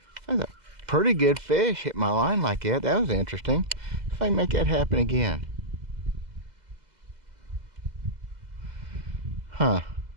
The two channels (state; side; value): late; left; 2.0 ms